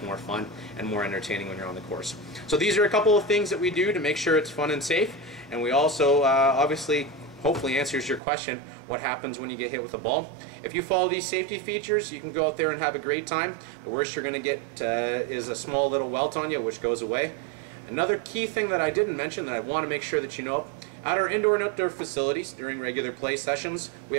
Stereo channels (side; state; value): left; drops out; at 8.2 s